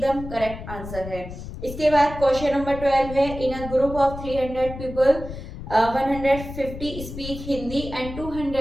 करेक्ट आंसर है। इसके बाद क्वेश्चन नंबर 12 है, in a group of 300 people 150 speak Hindi and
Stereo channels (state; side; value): noise; left; rumble, 10 dB below the sound